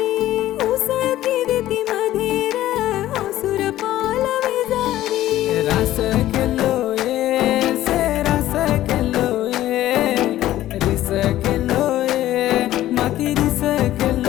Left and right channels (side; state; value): right; quieter; 14.1 dB